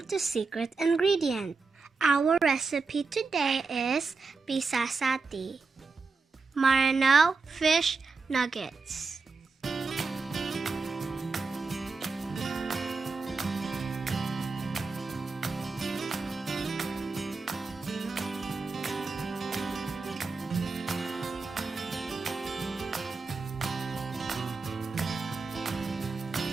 to Secret Ingredient. Our recipe today is PISASATI, Maranao fish nuggets.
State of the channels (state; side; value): quieter; left; 4.3 dB